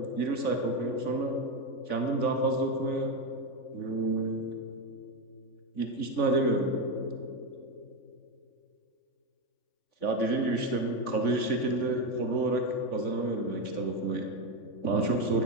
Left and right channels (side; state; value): right; late; 3.5 ms